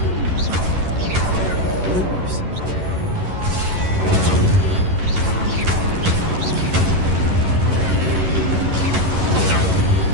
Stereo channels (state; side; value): late; left; 11 ms